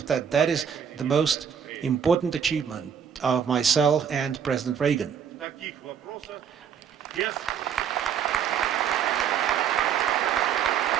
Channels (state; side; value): quieter; left; 7.9 dB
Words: that that is the most important achievement of myself and President Reagan.